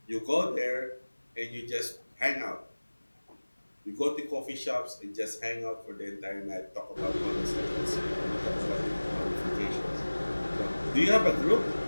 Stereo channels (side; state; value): both; inverted; correlation -1.00